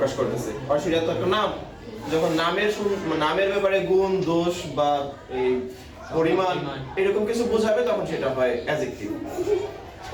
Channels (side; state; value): both; identical; correlation 1.00